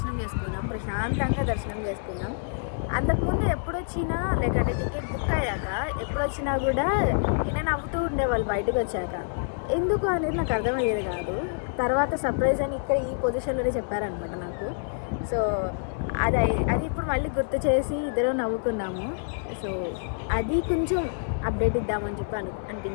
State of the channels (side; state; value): right; silent; digital silence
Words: చేసుకున్నాం, ప్రశాంతంగా దర్శనం చేసుకున్నాం. అంతకుముందు ఎప్పుడొచ్చినా లేకంటే టికెట్ బుక్ అయ్యాక ఎప్పుడొచ్చినా కూడా ఈయన నవ్వుతూ ఉండేవాళ్ళు బయటకు వచ్చాక. ఎందుకు అనేది నాకు అర్థమయ్యేది కాదు. తర్వాత సర్ప్రైజ్ అని ఇక్కడ ఈ పొజిషన్లోనే చెప్పారనమాట నాకు. సో అది అది ఇప్పుడు మళ్ళీ గుర్తు చేసి ఇద్దరు నవ్వుకున్నాము. సో అది కొంచెం అప్డేట్ ఇద్దామని చెప్పి